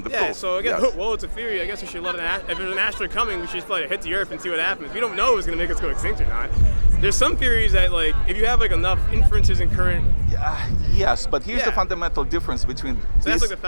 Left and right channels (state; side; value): inverted; both; correlation -1.00